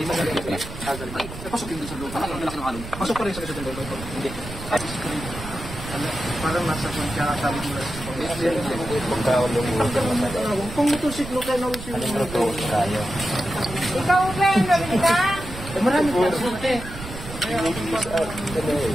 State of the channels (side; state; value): right; noise; rumble, 11 dB below the sound